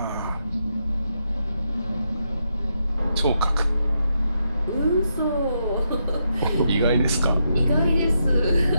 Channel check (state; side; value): inverted; both; correlation -0.82